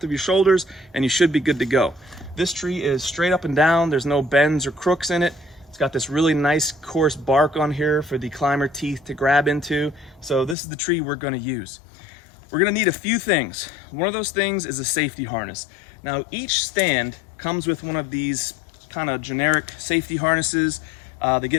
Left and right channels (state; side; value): drops out; right; at 10.6 s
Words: of your shoulders and you should be good to go. This tree is straight up and down, there's no bends or crooks in it. It's got this really nice coarse bark on here for the climber teeth to grab into. So this is the tree we're going to use. We're going to need a few things. One of those things is a safety harness. Now each stand comes with one of these kind of generic safety harnesses. They